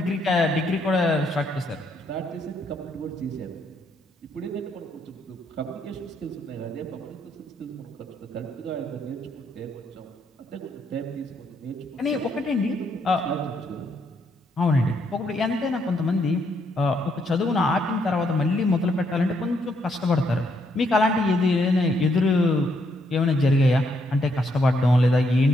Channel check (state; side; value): normal; both; correlation 0.74